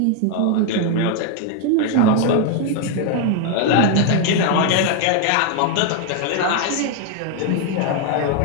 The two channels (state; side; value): different; both; correlation 0.00